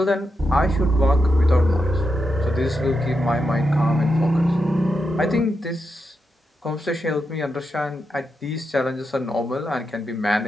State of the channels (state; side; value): normal; both; correlation 0.86